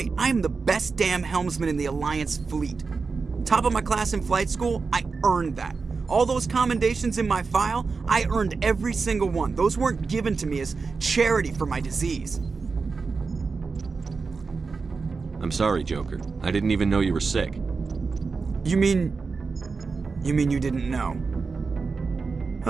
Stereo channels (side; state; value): left; quieter; 4.6 dB